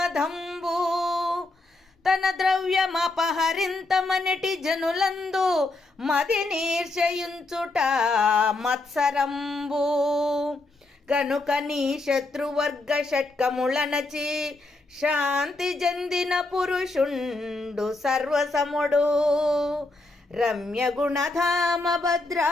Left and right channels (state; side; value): quieter; right; 3.1 dB